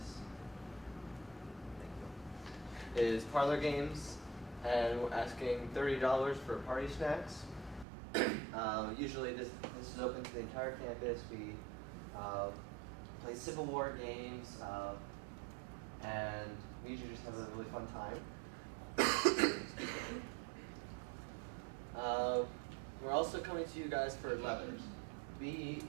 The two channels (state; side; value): drops out; left; at 7.9 s